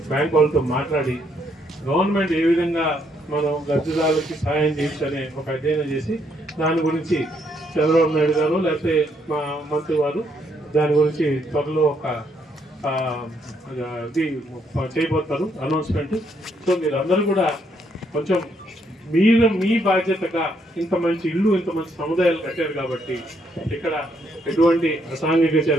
బ్యాంక్ వాళ్ళతో మాట్లాడి గవర్నమెంట్ ఏ విధంగా మనం లబ్ధిదారులకి సహాయం చేయొచ్చనే ఒక అధ్యయనం చేసి దాని గురించి చంద్రబాబు నాయుడు గారు లేకపోతే మా మంత్రి వారు దాని గురించి త్వరలో ఒక ఇది చేయబోతారు అనౌన్స్మెంట్. సో మీరు అందరూ కూడా కొంచెం మీ బాధ్యతగా ఇంత మంచి ఇల్లు, ఇంత మంచి సముదాయాలు కట్టారు కాబట్టి ఇక్కడ ఎటువంటి అసాంఘిక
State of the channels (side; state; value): both; normal; correlation 0.73